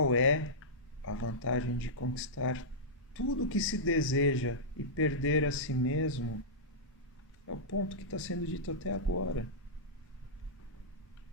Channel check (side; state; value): both; normal; correlation -0.13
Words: é a vantagem de conquistar tudo o que se deseja e perder a si mesmo? É o ponto que está sendo dito até agora.